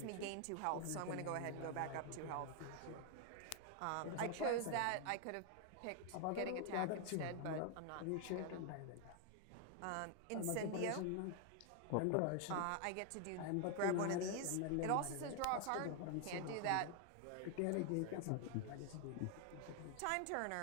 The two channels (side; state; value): both; different; correlation 0.00